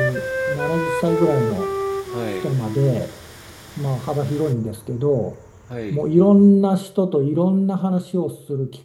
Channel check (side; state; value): both; identical; correlation 1.00